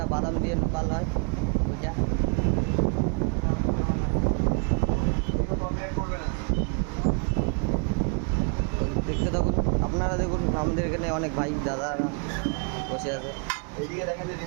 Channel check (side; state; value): left; quieter; 37.4 dB